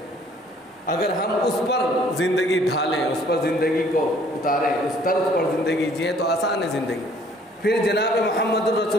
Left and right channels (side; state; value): both; normal; correlation 0.58